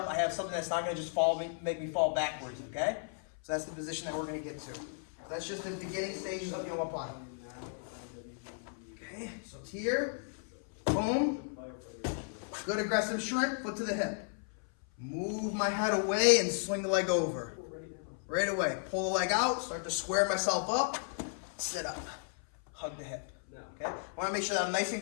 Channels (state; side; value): silent; right; 55 dB below the other